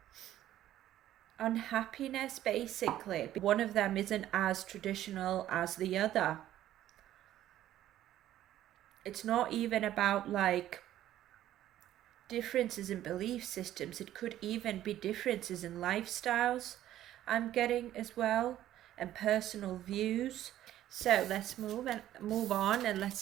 unhappiness, basically. One of them isn't as traditional as the other. It's not even about like differences in belief systems. It could even be differences in lifestyles, I'm getting as well, and personal views. So let's move on, and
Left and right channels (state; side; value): quieter; left; 12.8 dB